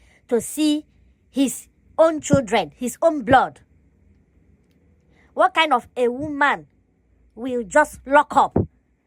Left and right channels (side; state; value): both; identical; correlation 1.00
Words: to see his own children, his own blood. What kind of a woman will just lock up